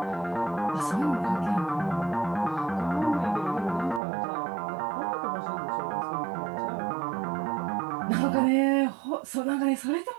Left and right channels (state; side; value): drops out; left; at 4.0 s